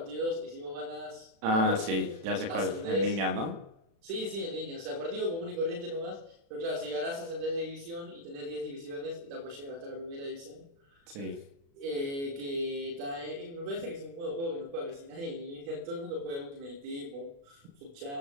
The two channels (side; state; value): left; late; 36 ms